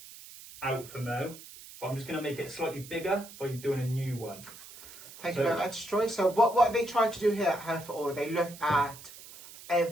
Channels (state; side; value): noise; right; hiss, 17 dB below the sound